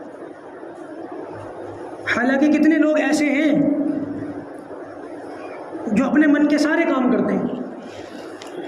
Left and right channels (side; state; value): both; identical; correlation 1.00